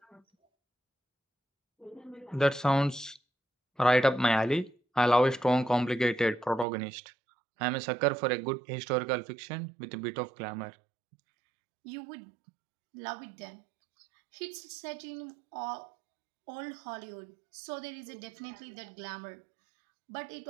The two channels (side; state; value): left; drops out; at 6.7 s